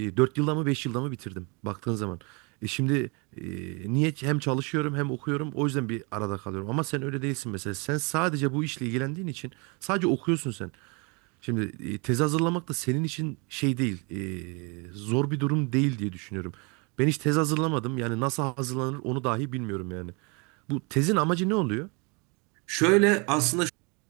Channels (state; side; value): quieter; left; 31.4 dB